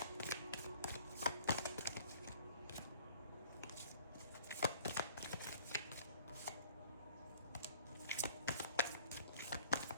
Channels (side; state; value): both; inverted; correlation -0.54